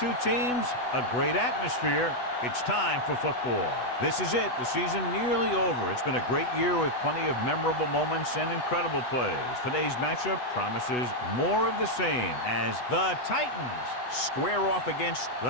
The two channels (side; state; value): right; late; 8.1 ms